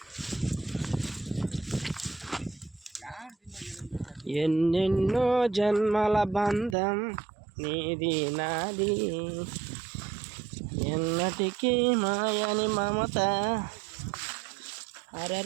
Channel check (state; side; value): drops out; left; at 6.8 s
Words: ఎన్నెన్నో జన్మల బంధం నీది నాది, ఎన్నటికీ మాయని మమత.